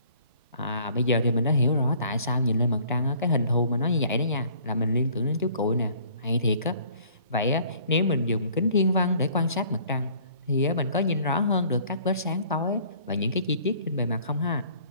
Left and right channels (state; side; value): inverted; both; correlation -0.55